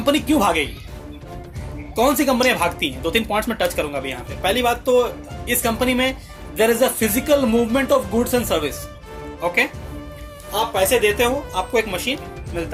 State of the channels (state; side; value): identical; both; correlation 1.00